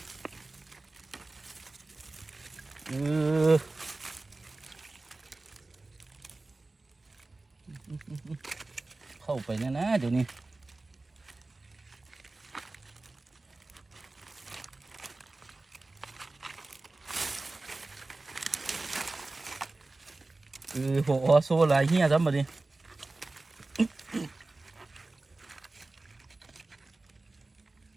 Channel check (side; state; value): left; quieter; 3.2 dB